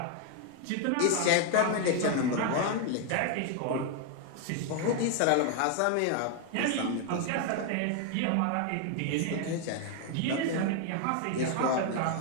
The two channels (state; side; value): different; both; correlation 0.01